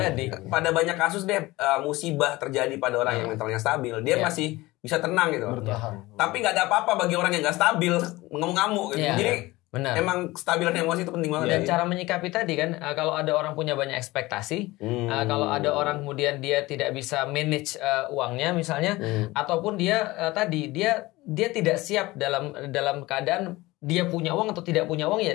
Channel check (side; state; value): right; quieter; 20.0 dB